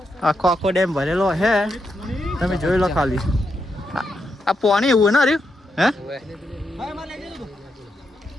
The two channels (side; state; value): both; normal; correlation 0.83